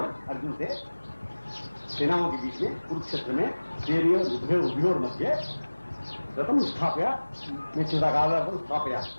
अर्जुन से सेनाओं के बीच में कुरुक्षेत्र में उभयोर मध्य रतम स्थाप्य मैं चिदाकाल स्थाप्या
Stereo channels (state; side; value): inverted; both; correlation -1.00